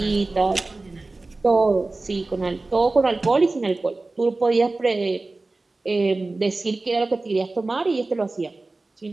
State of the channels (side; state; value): left; quieter; 3.3 dB